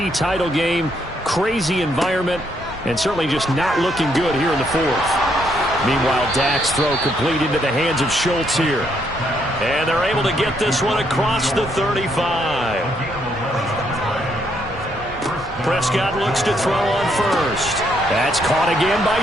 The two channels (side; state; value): both; normal; correlation 0.73